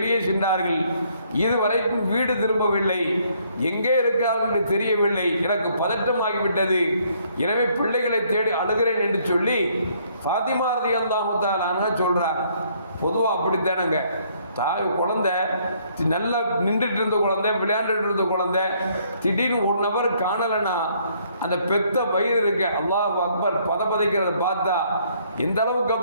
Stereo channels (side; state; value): both; inverted; correlation -0.66